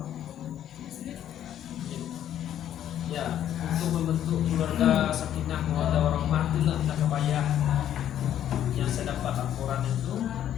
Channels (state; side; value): quieter; right; 10.9 dB